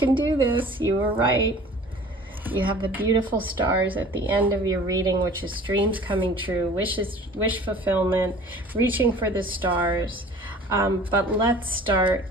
do this. You were right. You have the beautiful stars at the end of your reading, which is dreams coming true, wish fulfillment, reaching for the stars. But let's start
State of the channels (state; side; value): normal; both; correlation 0.46